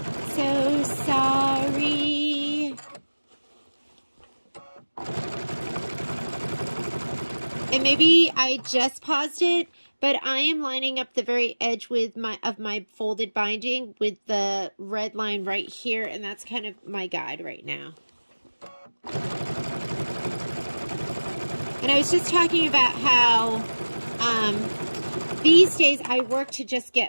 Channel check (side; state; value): both; inverted; correlation -1.00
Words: So sorry. And maybe I just paused it, but I am lining up the very edge with my folded binding with the red line right here, and that's kind of my guide right now. And I was just talking about how these days I work to just